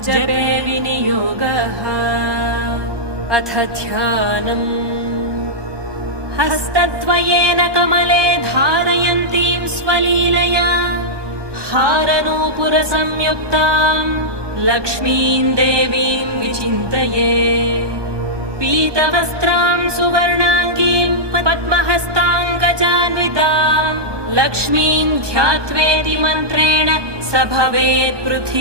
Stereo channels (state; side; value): late; left; 1.2 ms